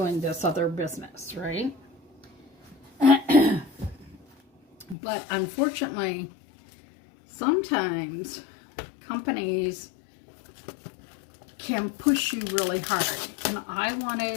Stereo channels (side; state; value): right; drops out; at 5.0 s